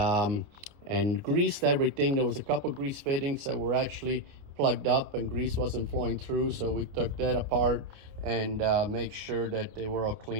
greased everything. There was a couple grease fittings that were actually plugged up and grease wasn't flowing through, so we took that apart and make sure that they were all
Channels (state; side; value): late; left; 29 ms